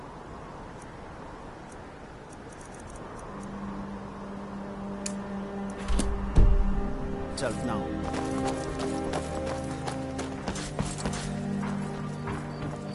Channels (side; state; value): both; identical; correlation 1.00